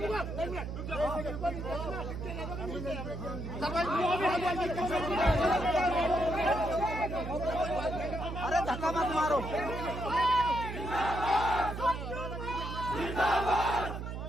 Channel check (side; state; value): right; noise; hum, 6 dB below the sound